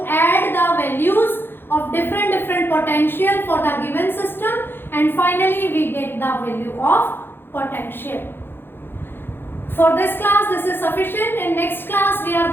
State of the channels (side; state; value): right; late; 0.10 ms